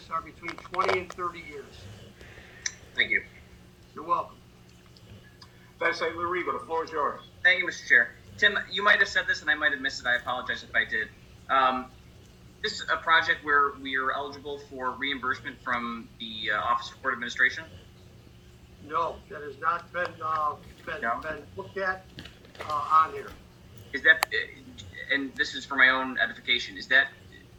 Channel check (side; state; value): both; identical; correlation 1.00